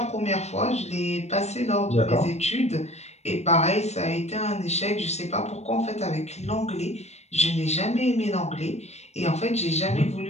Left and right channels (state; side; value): late; right; 0.32 ms